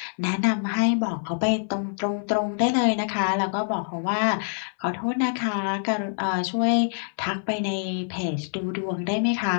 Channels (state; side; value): silent; right; 61 dB below the other